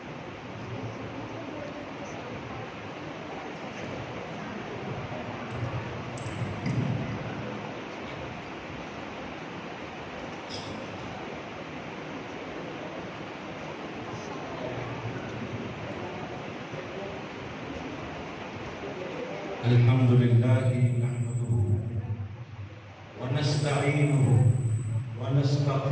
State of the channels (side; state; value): both; identical; correlation 1.00